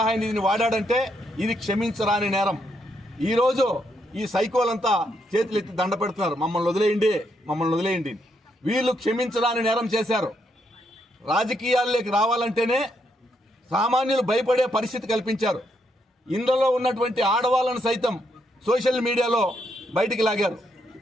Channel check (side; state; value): both; normal; correlation 0.77